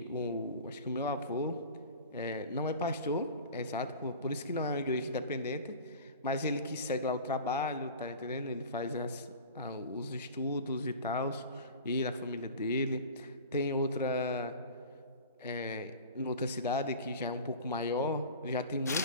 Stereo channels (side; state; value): both; inverted; correlation -0.37